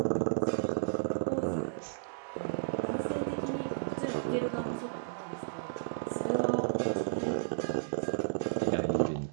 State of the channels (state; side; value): silent; left; digital silence